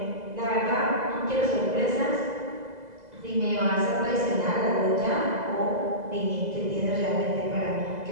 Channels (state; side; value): late; left; 2.0 ms